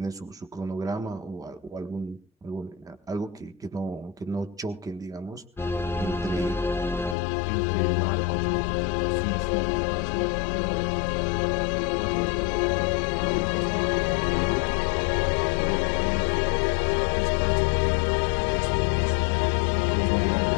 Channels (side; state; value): right; drops out; at 7.2 s